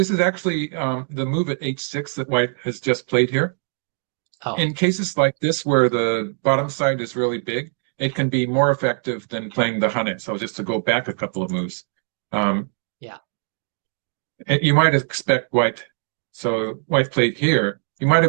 is actually the move at h6 that White has just played here. Oh. In cases like this where the bottom side is really big, it can be more effective than playing the Hunted. So just to go back a couple of moves. Um, Yeah. you might expect White. So White played here. You might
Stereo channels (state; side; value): silent; left; 58 dB below the other